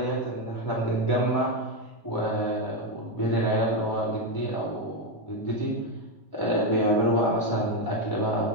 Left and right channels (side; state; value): both; normal; correlation 0.07